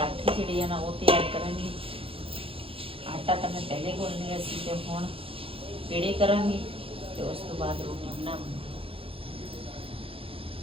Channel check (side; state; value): left; late; 0.27 ms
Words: ਜਿਹੜੇ ਆ ਨਾ ਉਹ ਤਿਆਰ ਕਰਾਂਗੇ। ਆਟਾ ਤਾਂ ਮੈਂ ਪਹਿਲੇ ਗੁੰਨ ਲਿਆ ਸੀ ਤੇ ਹੁਣ ਪੇੜੇ ਕਰਾਂਗੇ ਤੇ ਉਸ ਤੋਂ ਬਾਅਦ ਰੋਟੀ ਬਣਾਵਾਂਗੇ।